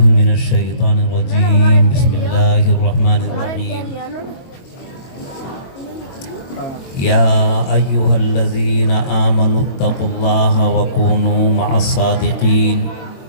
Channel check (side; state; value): right; late; 23 ms